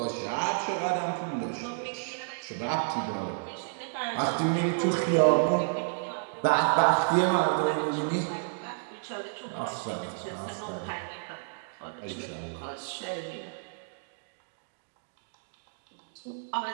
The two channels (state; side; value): silent; left; digital silence